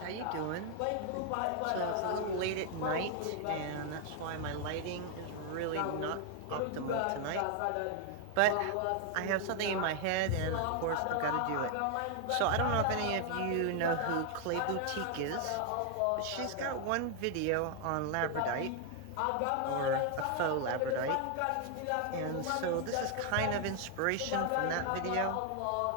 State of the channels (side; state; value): both; different; correlation 0.00